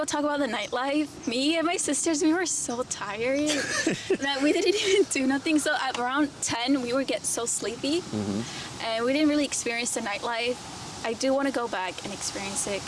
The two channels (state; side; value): identical; both; correlation 1.00